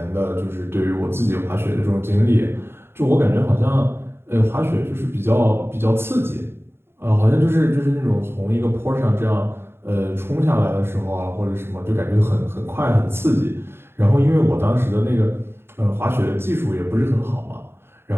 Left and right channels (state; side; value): late; left; 0.11 ms